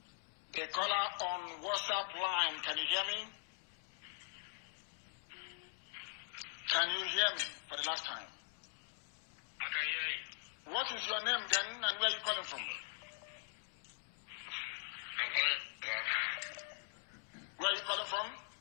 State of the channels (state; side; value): silent; right; 50 dB below the other